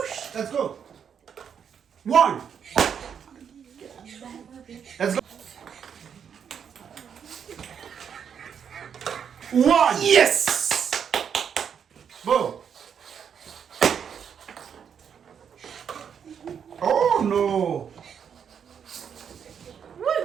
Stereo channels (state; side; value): quieter; left; 7.6 dB